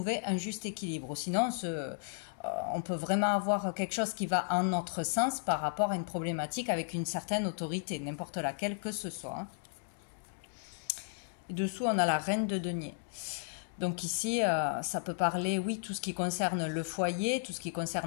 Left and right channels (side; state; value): right; silent; digital silence